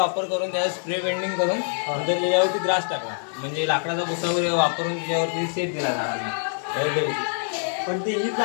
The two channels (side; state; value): right; silent; 62 dB below the other